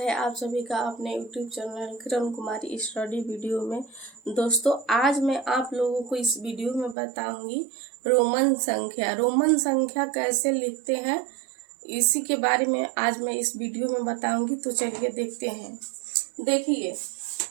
आप सभी का अपने YouTube channel Kiran Kumari study video में। दोस्तों, आज मैं आप लोगों को इस वीडियो में बताऊंगी रोमन संख्या। रोमन संख्या कैसे लिखते हैं इसी के बारे में आज मैं इस वीडियो में बताऊंगी। तो चलिए देखते हैं। देखिए,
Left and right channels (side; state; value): left; drops out; at 7.0 s